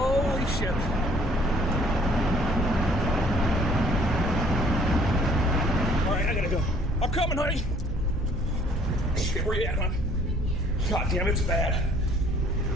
shit. Alright, I gotta go. I'm coming, honey. Shit, where you at, hon? God damn, it's bad.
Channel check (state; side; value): normal; both; correlation 0.58